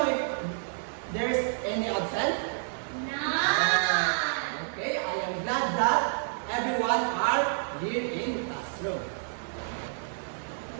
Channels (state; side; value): silent; left; digital silence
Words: if there's any absent? None. Okay, I am glad that everyone are here in classroom.